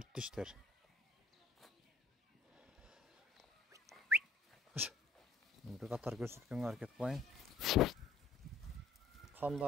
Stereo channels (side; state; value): right; quieter; 3.8 dB